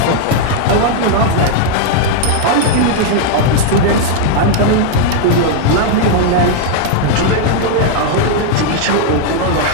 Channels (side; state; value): both; different; correlation 0.00